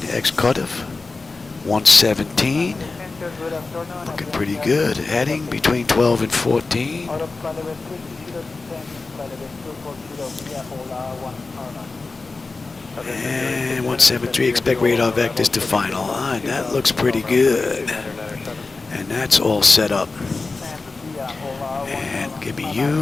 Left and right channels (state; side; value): quieter; right; 3.8 dB